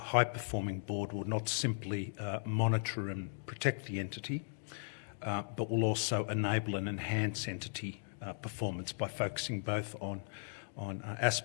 board will not simply monitor and protect the entity, but will also enable and enhance entity performance by focusing both on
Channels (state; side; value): silent; right; digital silence